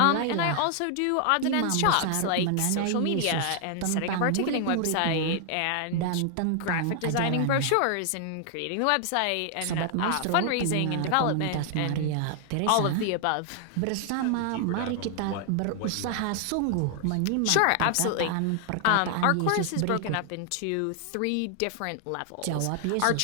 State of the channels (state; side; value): different; both; correlation 0.00